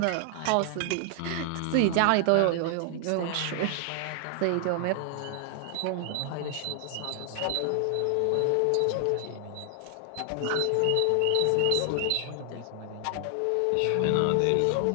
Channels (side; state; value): both; different; correlation 0.00